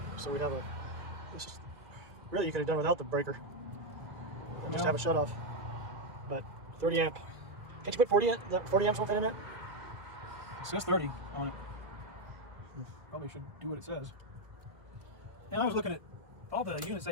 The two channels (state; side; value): late; left; 1.4 ms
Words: So we'd have a. This is, really, you could have done without the breaker. And just have a shut off. But 30 amp. Can't you put 40 amps worth in it? It says 30 on it. Probably should do what it says. And I was looking at all the units they